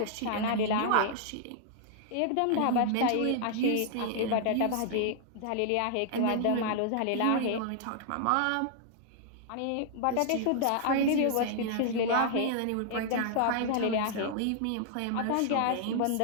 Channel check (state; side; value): different; both; correlation -0.01